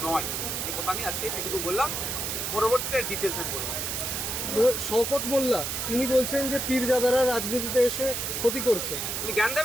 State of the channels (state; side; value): noise; right; hiss, 2 dB below the sound